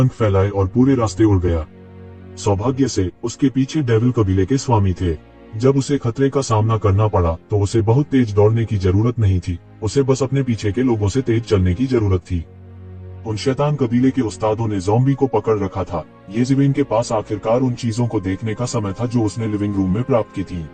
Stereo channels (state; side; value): identical; both; correlation 1.00